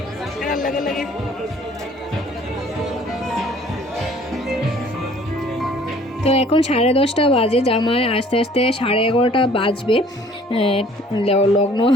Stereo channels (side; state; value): both; normal; correlation 0.55